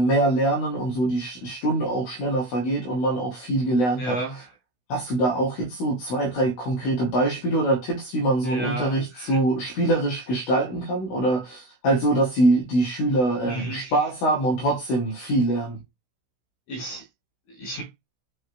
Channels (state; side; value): late; right; 16 ms